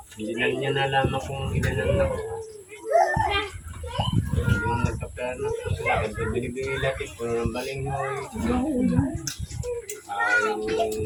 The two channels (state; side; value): identical; both; correlation 1.00